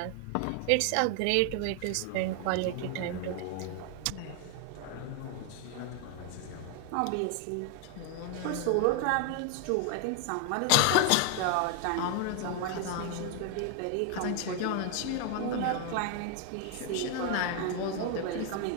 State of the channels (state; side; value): different; both; correlation 0.00